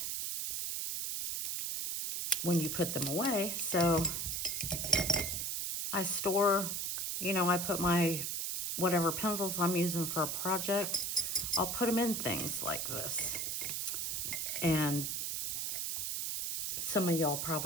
when you put them away? So I store, I put my whatever pencils I'm using for a project, I'll put them in things like this. And some of y'all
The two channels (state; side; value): noise; right; hiss, 1 dB below the sound